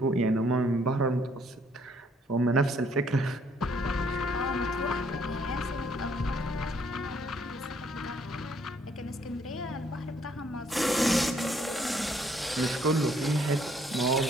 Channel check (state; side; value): normal; both; correlation 0.66